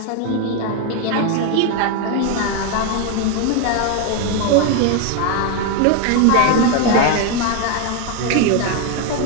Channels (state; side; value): different; both; correlation 0.01